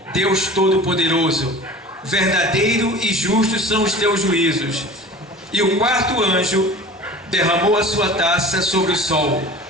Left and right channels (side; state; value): both; normal; correlation 0.40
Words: Deus Todo-Poderoso, verdadeiro e justo são os teus juízos. E o quarto anjo derramou a sua taça sobre o sol,